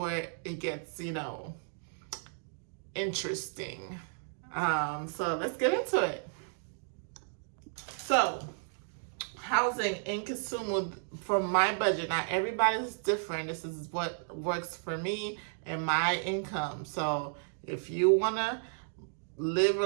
it gets, interesting. So let's get into it. So housing in Kisumu for my budget. Now everybody's different. This is what works for me and my income. So if you want to live a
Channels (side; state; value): left; silent; digital silence